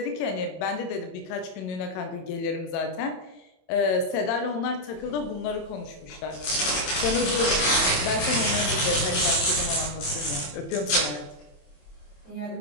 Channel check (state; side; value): late; right; 27 ms